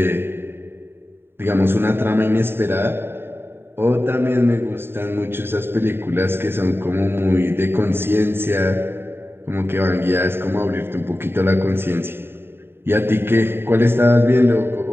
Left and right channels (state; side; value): late; left; 0.11 ms